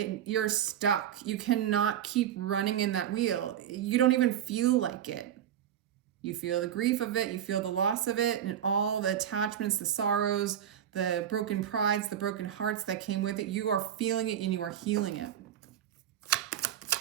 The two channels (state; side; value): quieter; left; 10.1 dB